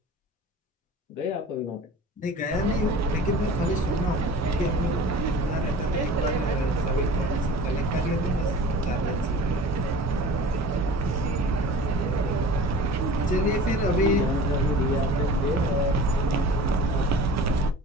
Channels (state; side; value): normal; both; correlation 0.40